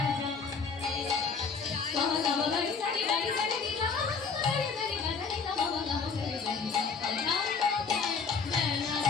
যায়, বাবা বাবা বাড়ি সারি বাড়ি সারি দিলা বাড়ি সারি বাজারি না বাবা বাবা সারি বাড়ি কথাই কথাই মেলা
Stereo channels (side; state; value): right; quieter; 5.2 dB